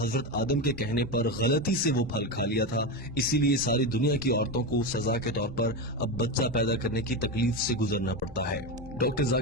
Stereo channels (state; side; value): normal; both; correlation 0.15